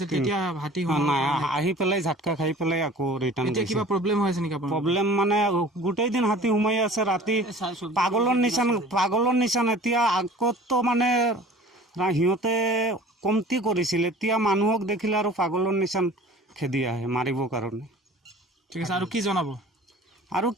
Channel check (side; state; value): both; normal; correlation 0.45